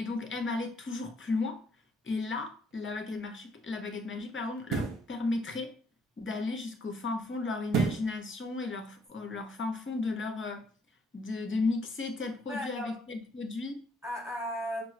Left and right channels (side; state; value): both; normal; correlation 0.68